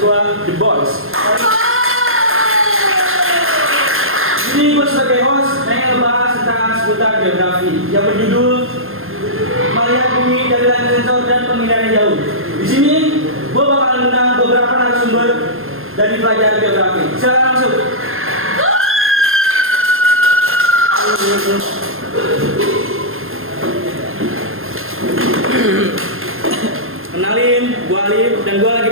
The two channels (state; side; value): late; left; 0.60 ms